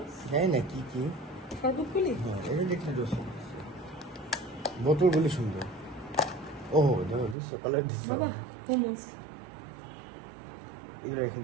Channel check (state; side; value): drops out; left; at 7.4 s